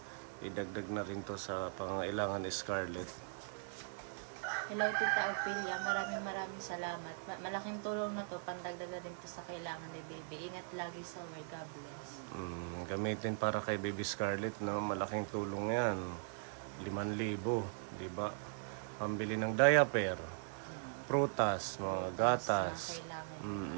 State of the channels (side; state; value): left; silent; digital silence